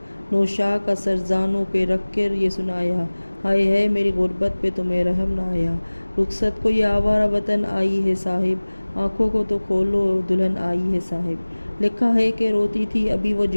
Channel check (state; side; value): inverted; both; correlation -1.00